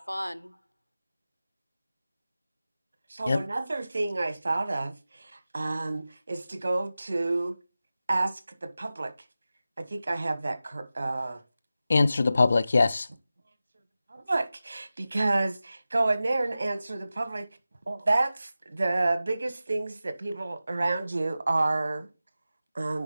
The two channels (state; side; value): inverted; both; correlation -0.94